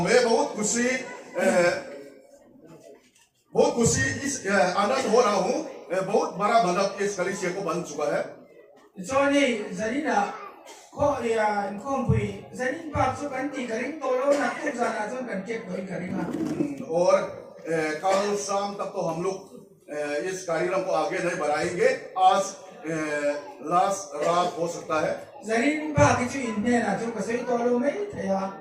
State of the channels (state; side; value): identical; both; correlation 1.00